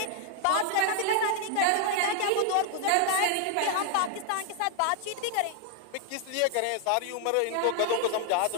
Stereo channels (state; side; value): different; both; correlation 0.00